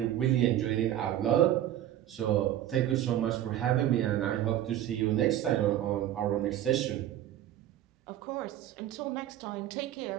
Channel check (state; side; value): quieter; left; 12.3 dB